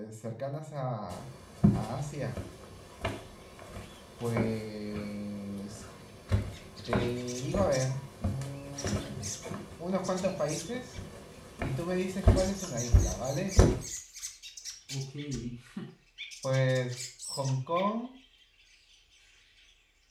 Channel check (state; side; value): identical; both; correlation 1.00